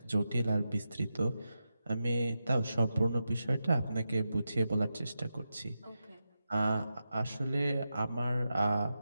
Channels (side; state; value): both; inverted; correlation -0.90